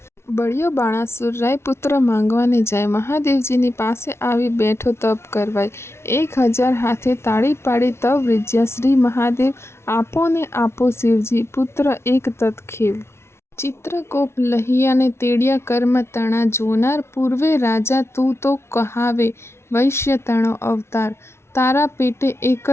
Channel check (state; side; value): late; right; 0.12 ms